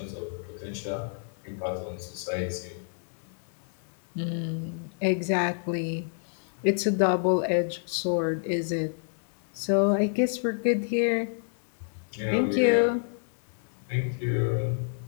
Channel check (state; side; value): silent; right; 59 dB below the other